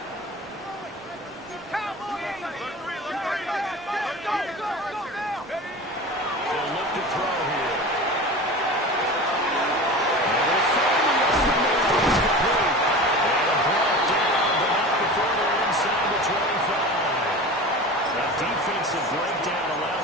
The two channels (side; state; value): both; normal; correlation 0.33